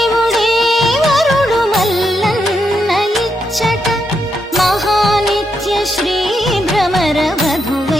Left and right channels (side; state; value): both; normal; correlation 0.81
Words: వరుడు మల్లన్న ఇచ్చట మహానిత్య శ్రీ భ్రమర